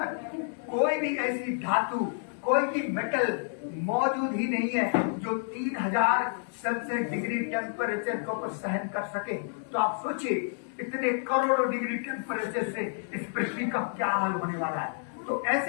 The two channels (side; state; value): right; silent; digital silence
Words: कोई भी ऐसी धातु, कोई भी मेटल मौजूद ही नहीं है जो 3000 सेल्सियस डिग्री टेम्परेचर को सहन कर सके। तो आप सोचिए इतने करोड़ों डिग्री टेम्परेचर से इस पृथ्वी का क्या हाल होने वाला है। तो